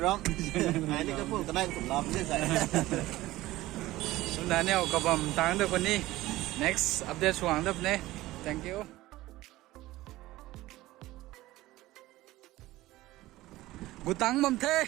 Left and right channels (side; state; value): left; quieter; 17.3 dB